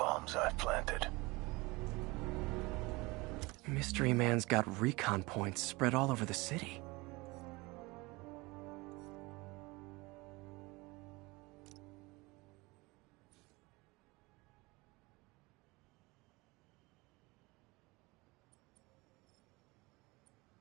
I've planted? Mystery Man's got recon points spread all over the city.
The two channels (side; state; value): left; quieter; 23.7 dB